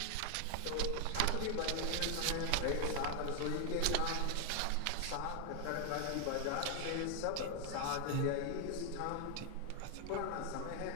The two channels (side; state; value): both; different; correlation 0.00